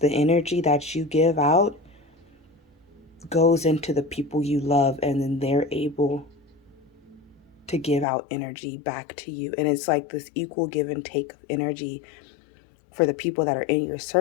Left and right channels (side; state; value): right; drops out; at 8.1 s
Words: energy that you give out goes into the people you love, and then they're able to give out energy back to you. And it's like this equal give and take of energy for the people that are in your